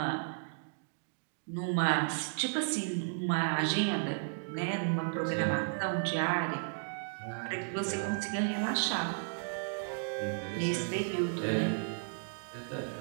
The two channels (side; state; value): left; silent; digital silence